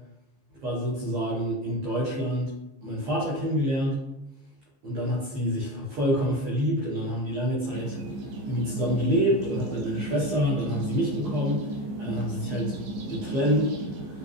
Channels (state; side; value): late; left; 15 ms